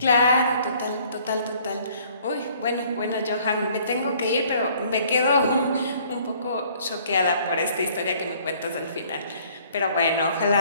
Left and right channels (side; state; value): both; inverted; correlation -0.59